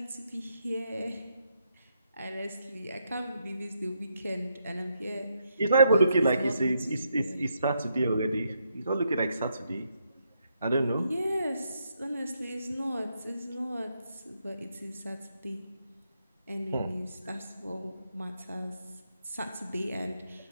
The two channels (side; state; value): both; inverted; correlation -0.78